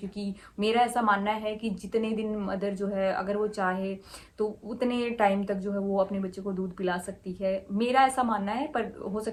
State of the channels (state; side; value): identical; both; correlation 1.00